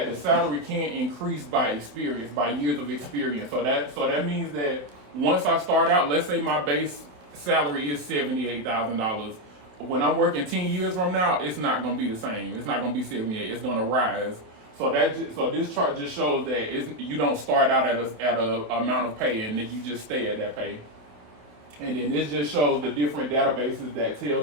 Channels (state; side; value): late; left; 27 ms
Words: the salary can increase by experience, by years of experience. So that means that once I start out, let's say my base salary is $78,000. When I'm working 10 years from now, it's not going to be the same. It's not going to be 78. It's going to rise. So this chart just shows that you don't start out at a amount of pay and then you just stay at that pay. And then this just shows the different databases that tell